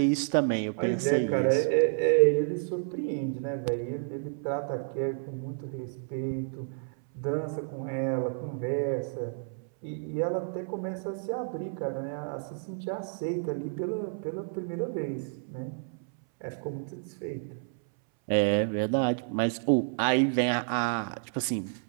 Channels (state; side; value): silent; left; 58 dB below the other